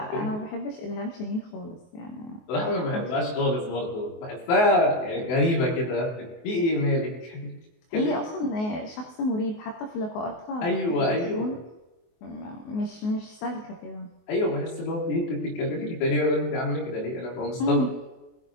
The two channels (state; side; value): late; right; 24 ms